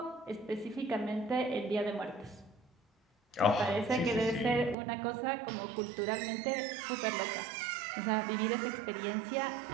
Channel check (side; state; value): left; drops out; at 4.8 s